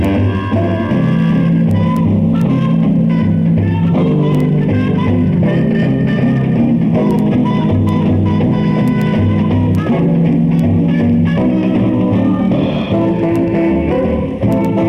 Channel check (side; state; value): both; identical; correlation 1.00